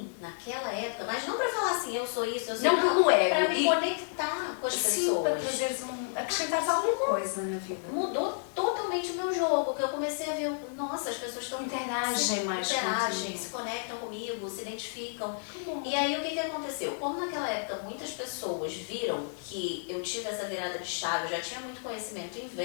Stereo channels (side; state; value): right; silent; digital silence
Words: naquela época, mas não para falar assim, eu sou isso, eu sou não, pelo ego. Para me conectar com as pessoas. Para trazeres acrescentar alguma coisa na vida. Mudou totalmente o meu jogo, que eu comecei a ver, nossa, as pessoas estão interagem, se conectam comigo, se identificam. E aí o que aconteceu? Como naquela época muitas pessoas viram que eu tive essa virada de chave, eu já tinha muito conhecimento em